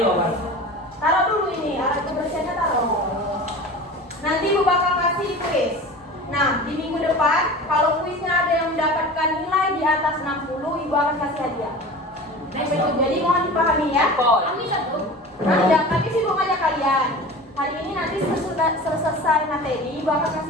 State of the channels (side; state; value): both; normal; correlation 0.36